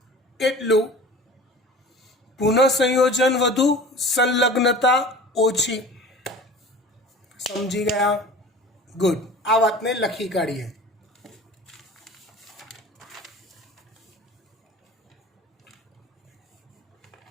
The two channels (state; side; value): normal; both; correlation 0.40